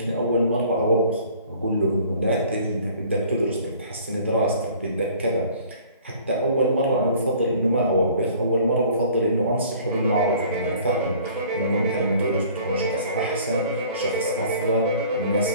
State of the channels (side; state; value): both; inverted; correlation -0.51